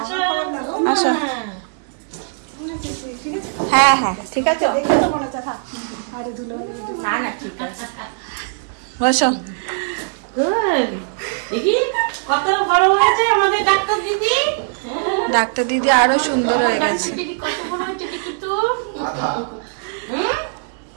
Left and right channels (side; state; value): left; silent; 66 dB below the other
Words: আসো। হ্যাঁ হ্যাঁ ঠিক আছে, না না ঠিক আছে, বসো। ডাক্তার দিদি আরো সুন্দর হয়ে গেছে,